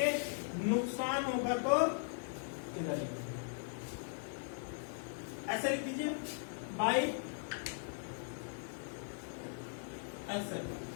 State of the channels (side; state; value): right; silent; digital silence